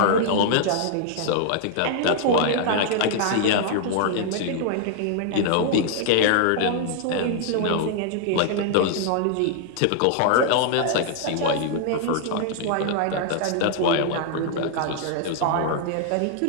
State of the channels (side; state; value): both; different; correlation -0.01